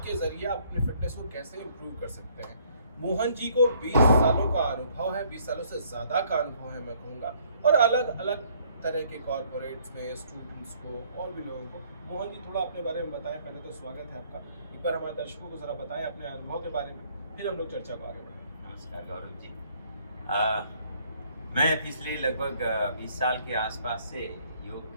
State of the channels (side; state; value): both; inverted; correlation -0.63